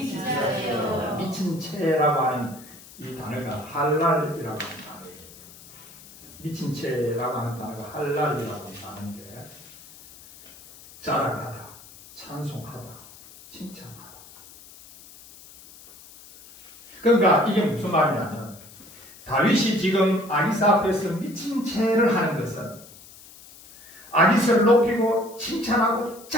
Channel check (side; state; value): left; noise; hiss, 20 dB below the sound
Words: 미친 채라고 하는 이 단어가 할랄이라고 하는 단어예요. 미친 채라고 하는 단어가 할랄이라고 하는 단어인데 자랑하다, 찬송하다, 칭찬하다. 그러니까 이게 무슨 말이냐면 다윗이 지금 아기사 앞에서 미친 채를 하는 것은 아기사를 높이고 칭찬하고